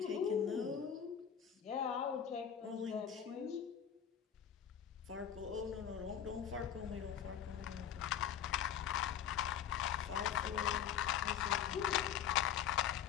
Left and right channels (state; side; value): quieter; right; 8.9 dB